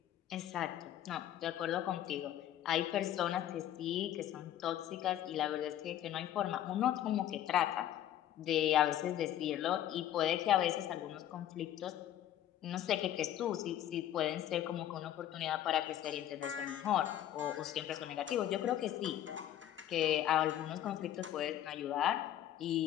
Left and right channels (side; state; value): right; quieter; 11.8 dB